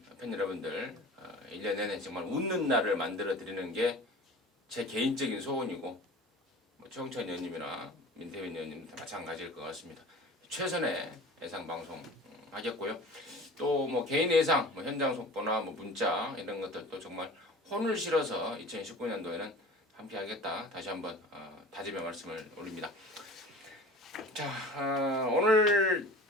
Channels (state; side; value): normal; both; correlation 0.39